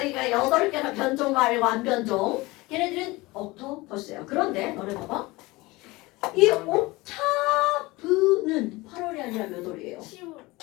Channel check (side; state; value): right; quieter; 21.7 dB